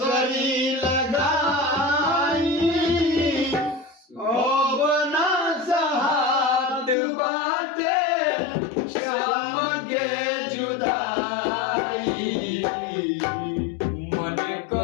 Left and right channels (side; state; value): right; drops out; at 7.0 s